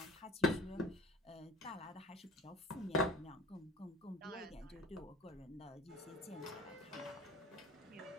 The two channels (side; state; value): both; normal; correlation 0.46